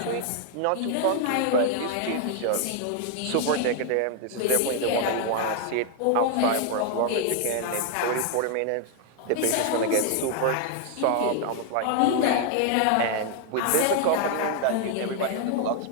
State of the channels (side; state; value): both; different; correlation 0.00